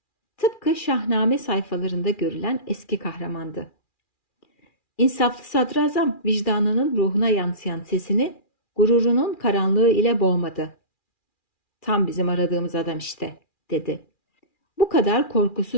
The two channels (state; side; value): late; right; 2.4 ms